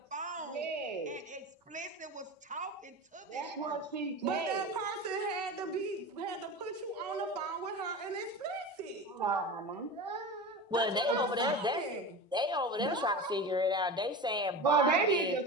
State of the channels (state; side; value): normal; both; correlation 0.28